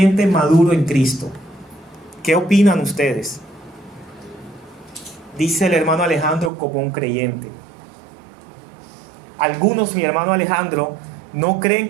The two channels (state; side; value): drops out; left; at 6.5 s